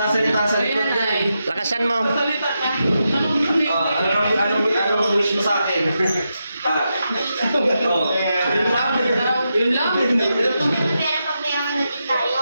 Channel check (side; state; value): both; inverted; correlation -0.86